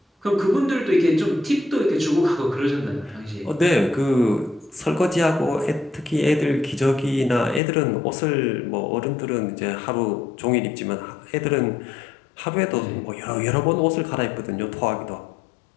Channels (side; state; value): right; drops out; at 7.6 s